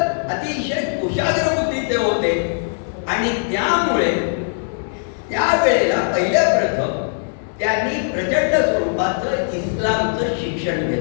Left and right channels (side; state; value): right; silent; 58 dB below the other